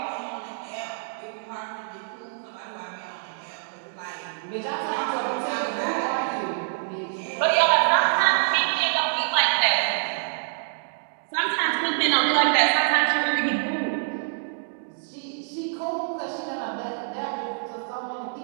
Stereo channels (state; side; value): silent; left; digital silence